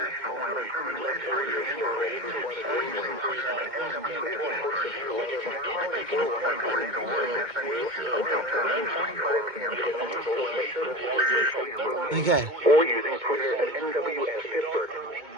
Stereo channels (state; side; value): late; left; 2.2 ms